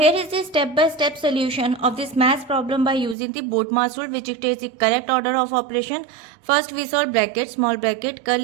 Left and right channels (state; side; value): drops out; left; at 3.2 s